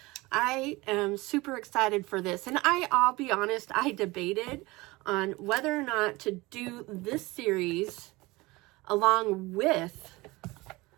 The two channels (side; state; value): left; quieter; 22.0 dB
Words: I am super excited for this, and I'll be honest, I debated on whether or not to do this series along with